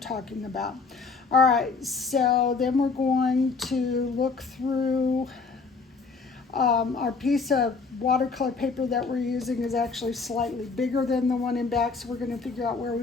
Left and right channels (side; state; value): right; quieter; 4.6 dB